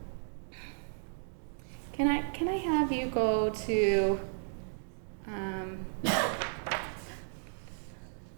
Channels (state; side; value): silent; left; digital silence